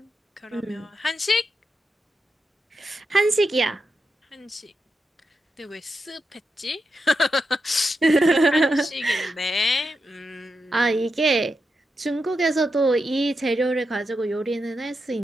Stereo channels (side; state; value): both; normal; correlation 0.87